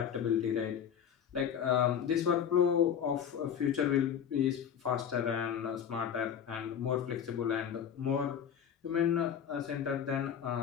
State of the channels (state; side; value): quieter; right; 8.5 dB